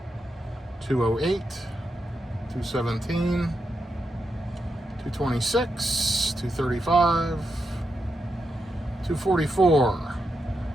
208. 217. 226. 235. 244.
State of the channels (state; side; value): normal; both; correlation 0.85